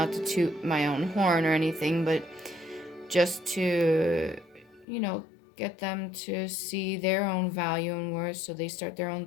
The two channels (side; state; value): right; drops out; at 4.9 s